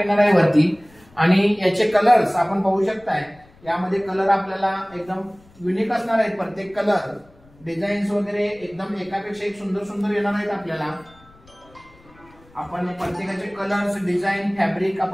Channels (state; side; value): noise; left; rumble, 27 dB below the sound